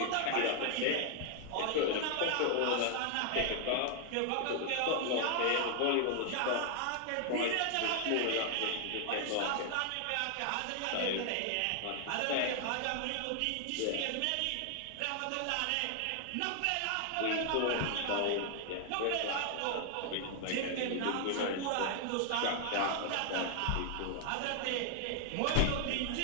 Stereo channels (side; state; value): both; different; correlation 0.00